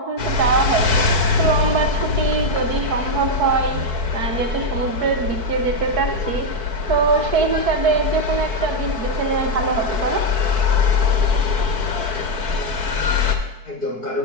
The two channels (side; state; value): left; late; 4.6 ms